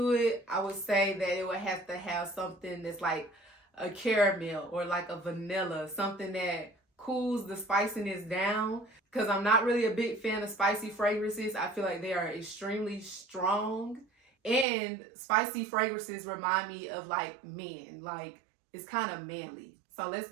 it, I would say that it would have to have something that's like a caramel or like a vanilla, something that cools the spiciness down. Because I'm not really a big fan of spicy fragrances. I feel like they are extremely strong. And spicy fragrances remind me of like men. Like it's kind of manly. So let's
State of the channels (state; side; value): drops out; left; at 14.7 s